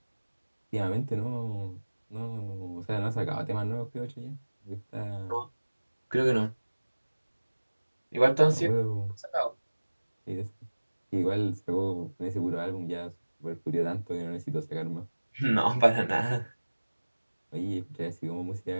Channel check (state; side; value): inverted; both; correlation -1.00